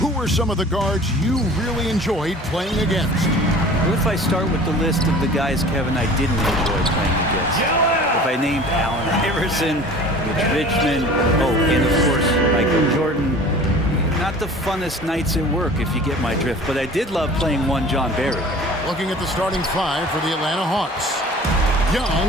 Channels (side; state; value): both; normal; correlation 0.43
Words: were some of the guards you really enjoyed playing against? What if I start with the list of the guys, Kevin, I didn't enjoy playing against? If I named Allen Iverson, Mitch Richmond, and of course, Michael Jordan, not the funnest nights at work, if you get my drift, but I did love playing one John Barry. Looking at the starting five for the Atlanta Hawks.